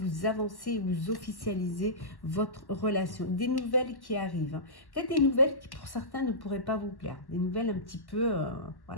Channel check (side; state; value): right; late; 1.1 ms